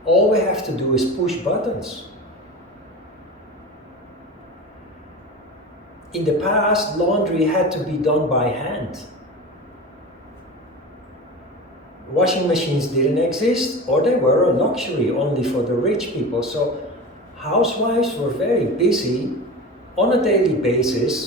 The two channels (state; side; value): normal; both; correlation 0.30